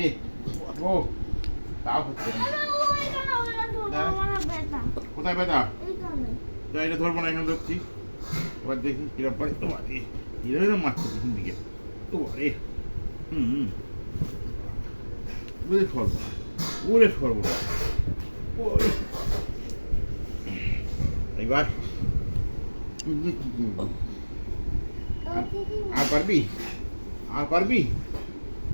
কোথায় ব্যথা? এটা ধরবো না, এখানে ধরছি। এবার দেখি কিরম পারে। তোমার এরকম মারছে পিছন দিকে। তোমারে ওরে সর্বনা, ওরে সর্বনা। এবার আর পারবি? আর পারবি?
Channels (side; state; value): both; inverted; correlation -1.00